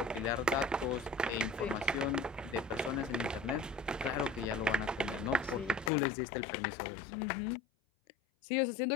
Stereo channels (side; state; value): right; drops out; at 5.9 s